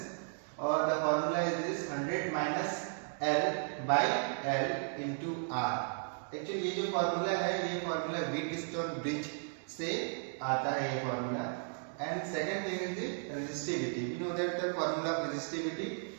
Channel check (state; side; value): silent; left; digital silence